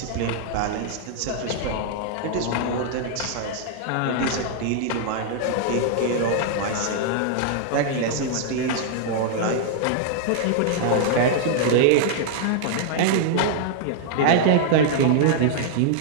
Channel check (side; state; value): both; different; correlation -0.01